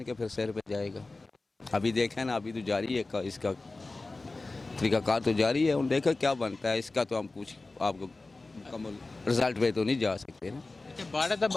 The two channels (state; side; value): quieter; right; 3.3 dB